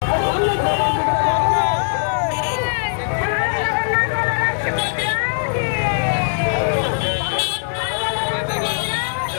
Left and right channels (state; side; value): silent; right; digital silence